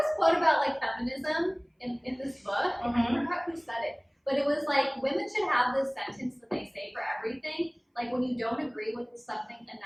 quote about like feminism in this book. I forgot who said it, but it was like women should have this sentence that they say for everything. Like when you don't agree with something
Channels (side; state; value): both; identical; correlation 1.00